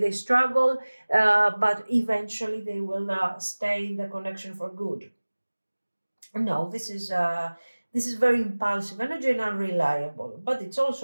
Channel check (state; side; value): inverted; both; correlation -1.00